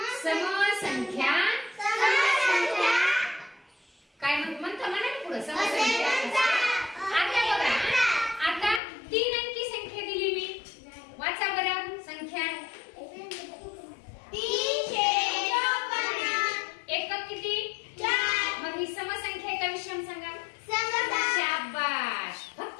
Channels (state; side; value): drops out; right; at 8.8 s